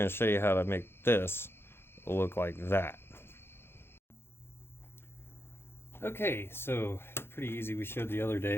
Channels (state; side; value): late; right; 0.11 ms